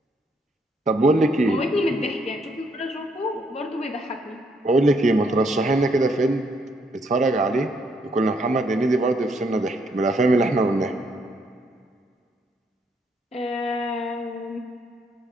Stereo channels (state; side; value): normal; both; correlation 0.72